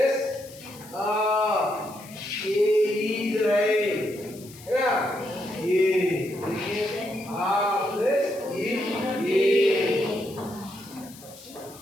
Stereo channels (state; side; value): noise; left; hiss, 20 dB below the sound